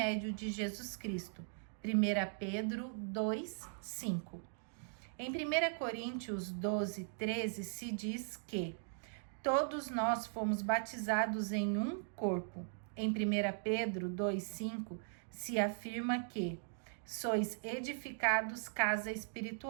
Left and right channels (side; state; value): left; silent; digital silence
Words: de Jesus Cristo. 1 Pedro 2, 5. Em 1 Coríntios 12, 13 se diz que todos nós fomos batizados em um corpo, Em 1 Pedro 2,5 se afirma que sois edificados casa